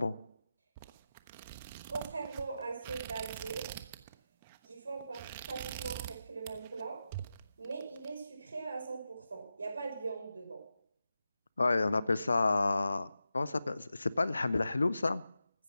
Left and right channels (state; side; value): inverted; both; correlation -0.91